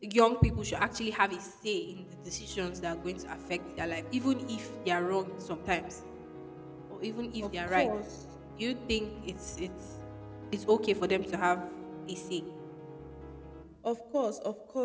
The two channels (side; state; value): both; identical; correlation 1.00